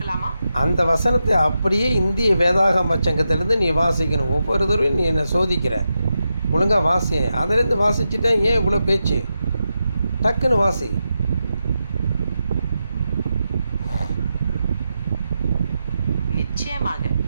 அந்த வசனத்தை அப்படியே இந்திய வேதாகம சங்கத்திலிருந்து நீ வாசிக்கணும். ஒவ்வொரு தடவையும் நீ என்னை சோதிக்கிற, ஒழுங்காக வாசி. அதிலிருந்து வாசிச்சுட்டேன், ஏன் இவ்வளோ பேச்சு? டக்குன்னு வாசி. நிச்சயமாக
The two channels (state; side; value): inverted; both; correlation -0.88